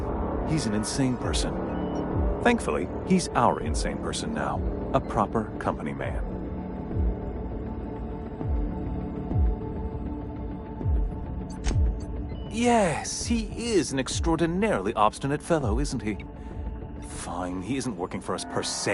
he's an insane person. Thankfully, he's our insane person now. A proper company man. Yes, he is an extraordinarily obstinate fellow, isn't he? Fine, he isn't working for us per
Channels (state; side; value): identical; both; correlation 1.00